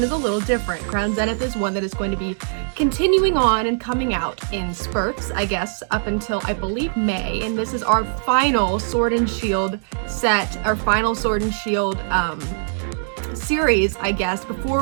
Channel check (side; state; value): left; silent; digital silence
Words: is a little different. Crown Zenith is one that is going to be continuing on and coming out in spurts, I guess, up until, I believe, May. And this is our final Sword and Shield set, our final Sword and Shield series, I guess,